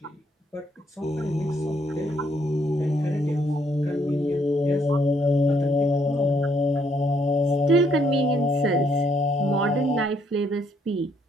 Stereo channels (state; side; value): normal; both; correlation 0.70